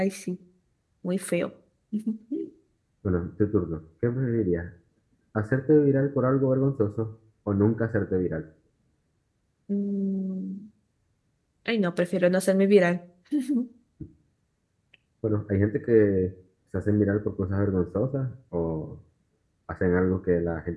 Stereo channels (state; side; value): identical; both; correlation 1.00